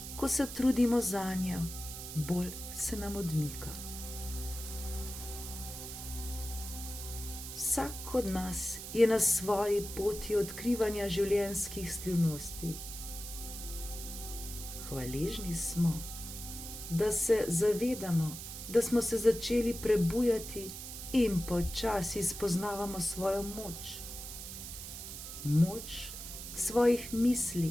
ko se trudimo zanjo, bolj se nam odmika. Vsak od nas je na svoji poti odkrivanja življenjskih skrivnosti. Hvaležni smo, da se zavedamo, da smo se začeli prebujati in počasi spoznavamo svojo moč. Moč svojih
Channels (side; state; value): right; noise; hiss, 9 dB below the sound